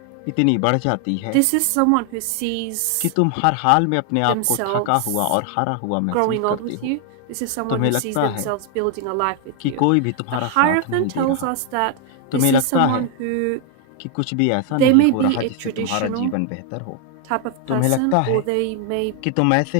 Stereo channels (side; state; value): both; different; correlation 0.00